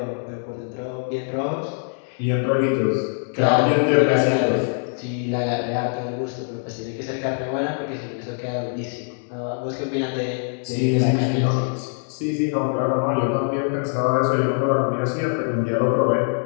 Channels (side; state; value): right; silent; 63 dB below the other